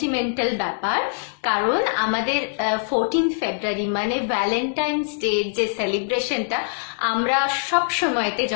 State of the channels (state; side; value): silent; right; digital silence